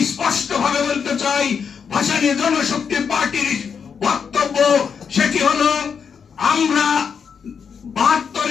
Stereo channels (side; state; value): right; quieter; 6.6 dB